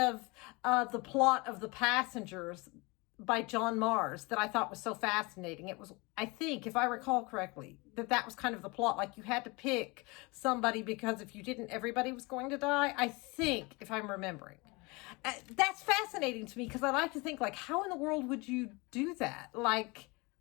the plot of The Passengers by John Mars that I thought was so fascinating. It was, I think, if I recall correctly, that was kind of the plot. Like you had to pick somebody because if you didn't, everybody was going to die. I think, if I'm remembering. That's fascinating to me because I like to think, like, how in the world would you do that? Like,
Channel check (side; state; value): right; quieter; 26.1 dB